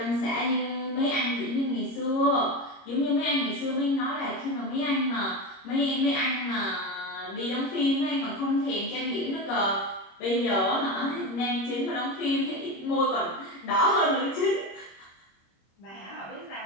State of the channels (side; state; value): right; late; 26 ms